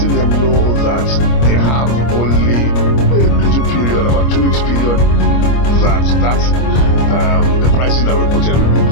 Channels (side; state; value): right; late; 25 ms